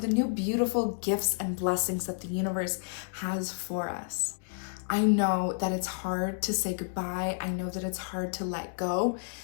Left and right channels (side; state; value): right; silent; digital silence